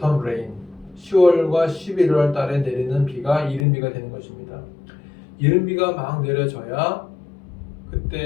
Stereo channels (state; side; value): drops out; right; at 3.7 s